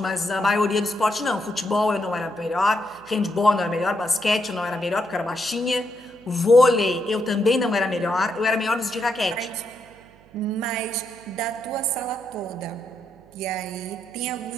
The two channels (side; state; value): right; noise; hum, 27 dB below the sound